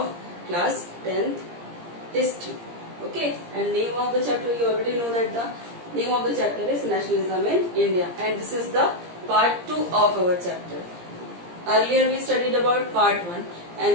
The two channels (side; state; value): left; late; 17 ms